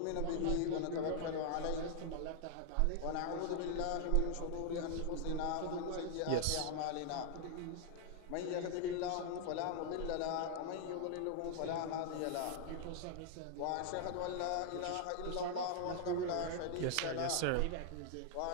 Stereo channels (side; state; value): both; different; correlation 0.00